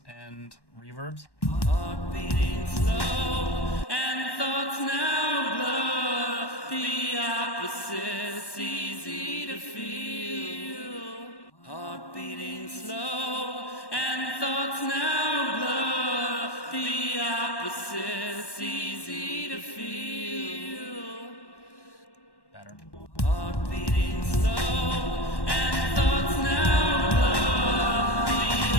and reverbs. Heart beating slow and thoughts now blur. The opposites easy to feel. Heart beating slow and thoughts now blur. The opposites easy to feel. Better. Heart beating slow and thoughts now blur. The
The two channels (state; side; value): late; right; 1.1 ms